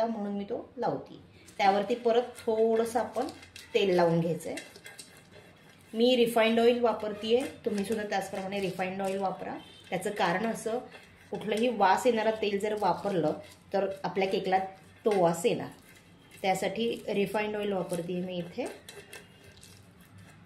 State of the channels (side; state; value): both; identical; correlation 1.00